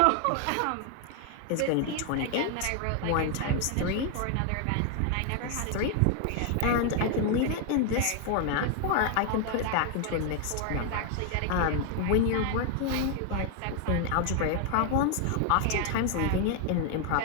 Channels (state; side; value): different; both; correlation 0.00